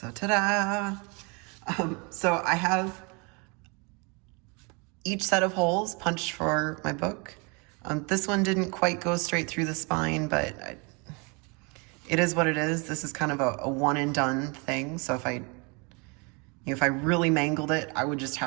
ta-da! So I have each set of holes punched for my book. This one didn't quite go straight through the spine, but it is what it is. This is kind of a one and done thing. So if I really mangled it, I would just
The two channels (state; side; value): quieter; left; 31.2 dB